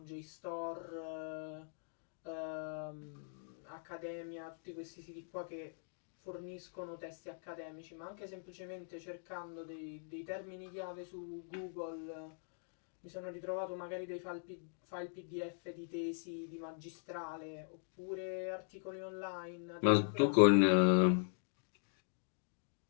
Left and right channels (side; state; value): right; silent; digital silence